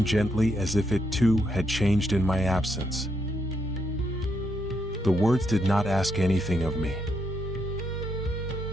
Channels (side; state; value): both; normal; correlation 0.78